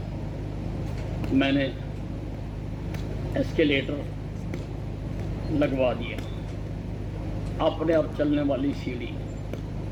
मैंने एस्केलेटर लगवा दिया, अपने आप चलने वाली सीढ़ी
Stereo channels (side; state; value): both; identical; correlation 1.00